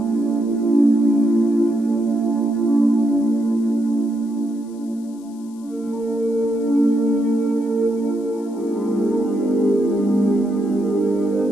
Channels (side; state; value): left; noise; hiss, 28 dB below the sound